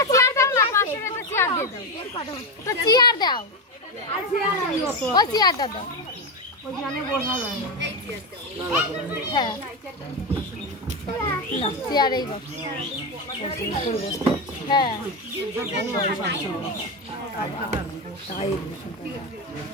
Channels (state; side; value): normal; both; correlation 0.13